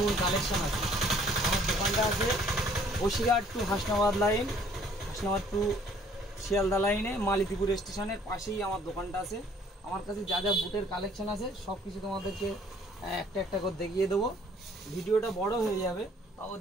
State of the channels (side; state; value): both; normal; correlation 0.59